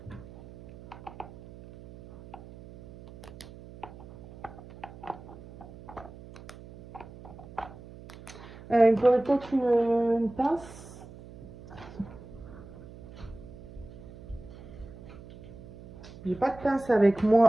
Il me faudrait peut-être une pince. J'ai pas de pince avec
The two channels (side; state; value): right; noise; hum, 17 dB below the sound